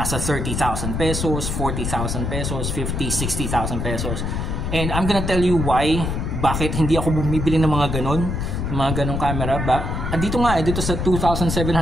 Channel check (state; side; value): noise; left; rumble, 2 dB below the sound